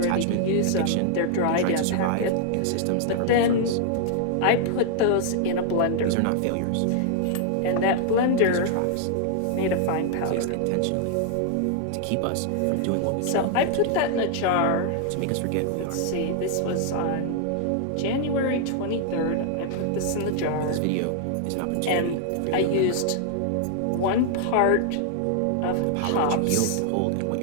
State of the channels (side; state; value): both; different; correlation 0.00